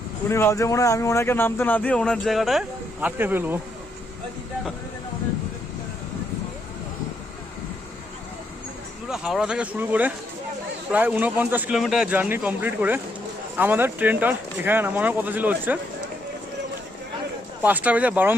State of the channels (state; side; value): normal; both; correlation 0.76